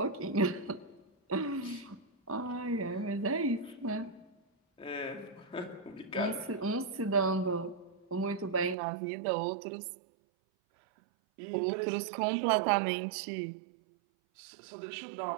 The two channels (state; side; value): drops out; left; at 8.8 s